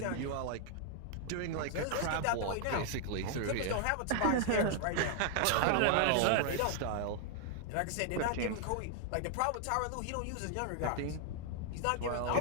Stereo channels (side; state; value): both; different; correlation 0.00